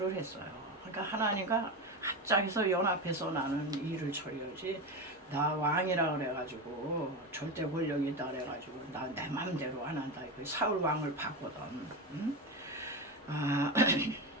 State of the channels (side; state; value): both; normal; correlation 0.19